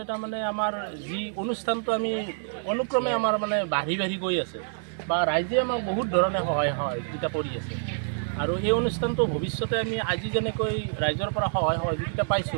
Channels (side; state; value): left; silent; digital silence